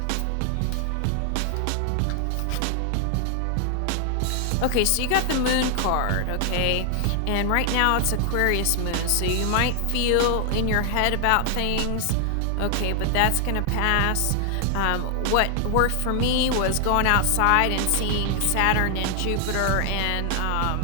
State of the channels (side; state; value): both; different; correlation 0.00